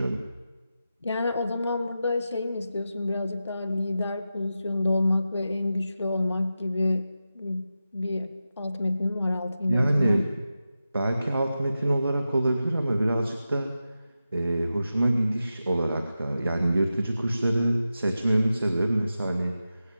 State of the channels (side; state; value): both; inverted; correlation -0.91